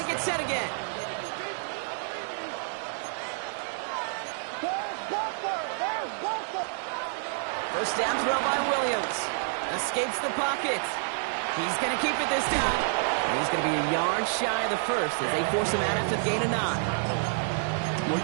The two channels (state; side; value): silent; left; digital silence